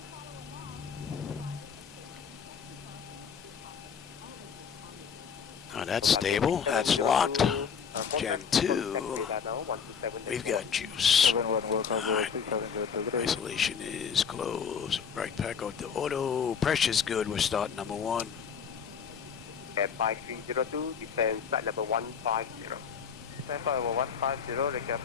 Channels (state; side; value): quieter; right; 6.9 dB